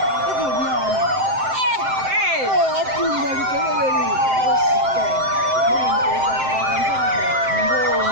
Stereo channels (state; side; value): late; left; 7.7 ms